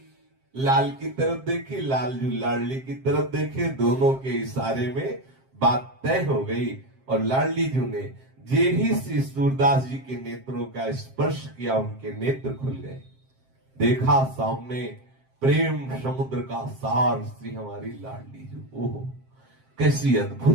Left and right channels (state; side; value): late; left; 7.6 ms